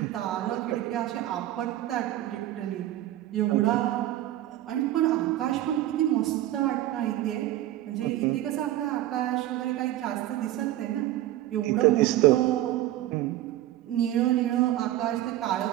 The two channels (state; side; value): quieter; left; 14.2 dB